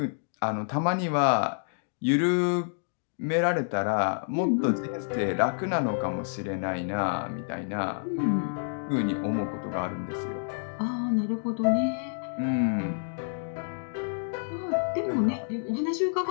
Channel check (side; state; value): right; silent; digital silence